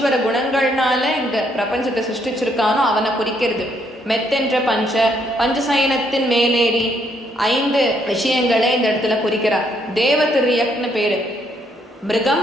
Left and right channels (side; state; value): both; normal; correlation 0.71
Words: குணங்கள்னால இந்த பிரபஞ்சத்தை சிருஷ்டிச்சிருக்கானோ அவனை குறிக்கிறது. மெத்தென்ற பஞ்ச, பஞ்சசயனத்தின் மேலேறி 5 விஷயங்களை இந்த இடத்துல குறிக்கிறார். தேவதிரியக்னு பேரு. மிருகம்,